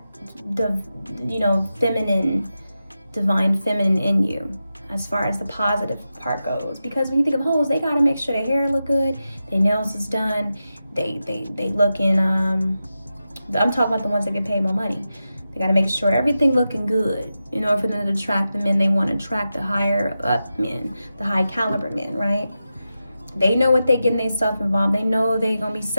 feminine, divine feminine in you, as far as the positive part goes. Because when you think of hoes, they gotta make sure their hair look good, their nails is done, they look in I'm talking about the ones that get paid more money. They gotta make sure everything looking good in order for them to attract the men they want to attract, the higher up men, the high caliber men, right? They know what they getting themselves involved. They know they gonna be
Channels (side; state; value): both; inverted; correlation -0.91